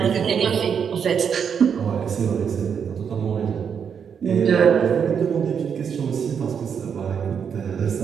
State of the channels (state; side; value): quieter; left; 7.2 dB